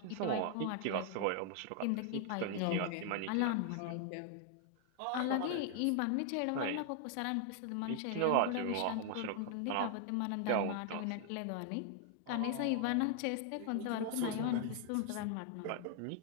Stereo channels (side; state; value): both; different; correlation 0.00